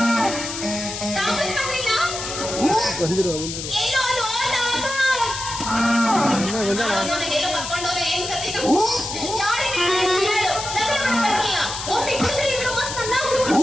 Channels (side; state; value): left; noise; hiss, 6 dB below the sound